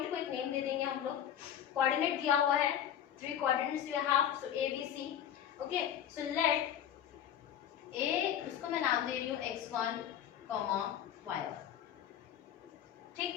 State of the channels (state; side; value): quieter; right; 10.0 dB